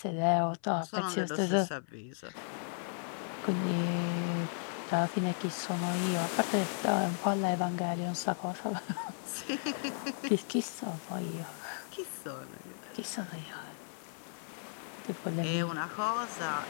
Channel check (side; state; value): right; silent; 54 dB below the other